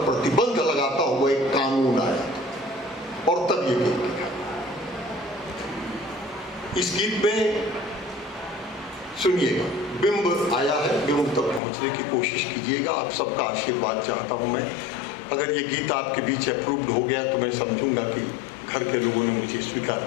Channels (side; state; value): right; drops out; at 11.6 s